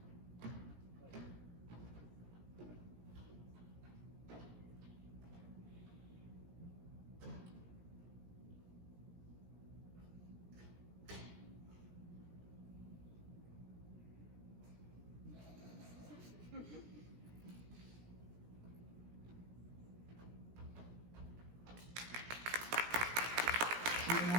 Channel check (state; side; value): late; left; 17 ms